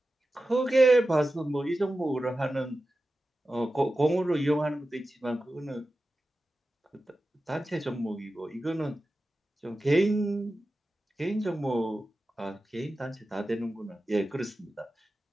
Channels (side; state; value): both; normal; correlation 0.93